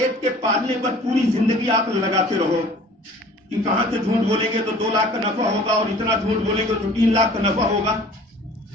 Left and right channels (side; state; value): both; normal; correlation 0.48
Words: کے پالنے پر پوری زندگی عقل لگاتے رہو کہ کہاں سے جھوٹ بولیں گے تو 2 لاکھ کا نفع ہوگا اور اتنا جھوٹ بولیں گے تو 3 لاکھ کا نفع ہوگا.